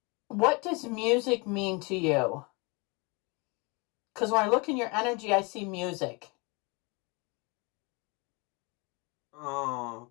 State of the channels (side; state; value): right; quieter; 29.2 dB